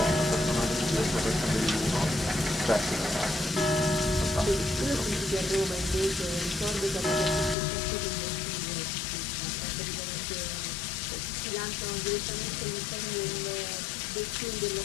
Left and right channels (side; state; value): right; drops out; at 7.6 s